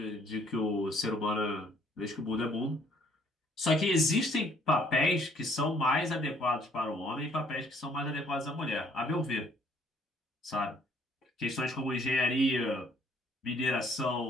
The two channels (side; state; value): both; normal; correlation 0.62